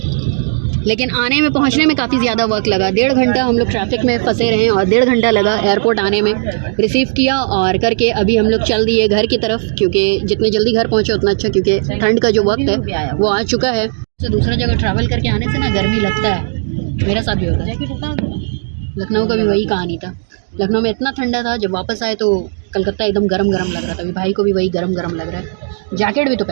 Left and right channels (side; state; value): left; silent; digital silence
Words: लेकिन आने में पहुंचने में काफ़ी ज़्यादा वक्त लगा। 1.5 घंटा हम लोग ट्रैफिक में फंसे रहे और 1.5 घंटा लगा एयरपोर्ट आने में। रिसीव किया और करके अभी हम लोग चल दिए घर की तरफ, क्योंकि जितने जल्दी घर पहुंचे उतना अच्छा, क्योंकि ठंड का जो वक्त है वो आ चुका है। तो दूसरा जगह ट्रैवल करके आने से ना गर्मी लगता है। मेरा साथ भी होता है। लखनऊ का भी वही कहानी था। लखनऊ में इतना ठंडा था, जब वापस आए तो कलकत्ता एकदम गरम गरम लग रहा था। अभी भाई को भी वही गरम गरम लग रहा है। जैकेट भी तो